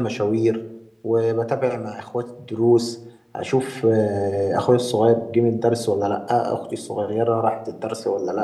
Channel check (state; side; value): identical; both; correlation 1.00